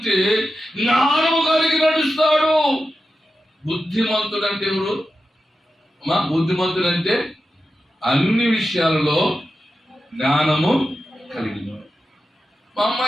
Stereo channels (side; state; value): both; normal; correlation 0.91